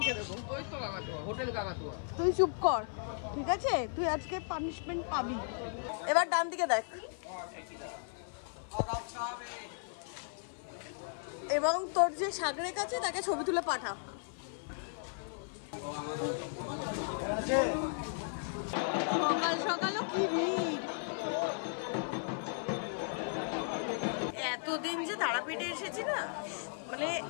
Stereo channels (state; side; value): silent; right; 54 dB below the other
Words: দেবো। ওই তো কাকাতুয়া, হোটেল কাকাতুয়া। তুই চুপ কর, ঠিক আছে? তুই আজকে পানিশমেন্ট পাবি। এবার ডান দিকে দেখ, এবং তোর যে সাগরেক আছে তাকে ছবি তুলে পাঠা। সকাল সকালও কি ভিড়! এতদিন যে তারাপীঠে এসেছি না, মানে